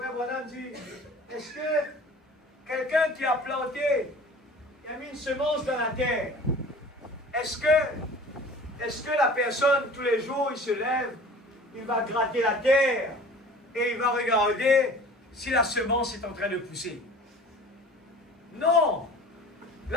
Branham dit, est-ce que quelqu'un qui a planté, qui a mis une semence dans la terre, est-ce que la personne, tous les jours, il se lève, il va gratter la terre et il va regarder si la semence est en train de pousser? Non.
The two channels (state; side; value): normal; both; correlation 0.43